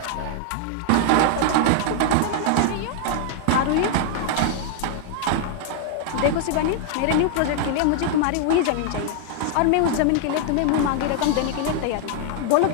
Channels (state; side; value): different; both; correlation 0.00